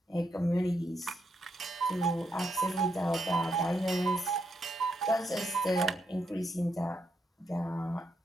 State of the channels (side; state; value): both; normal; correlation 0.79